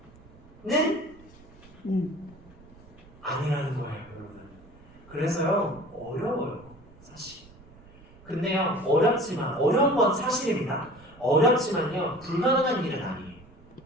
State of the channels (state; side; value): noise; right; rumble, 23 dB below the sound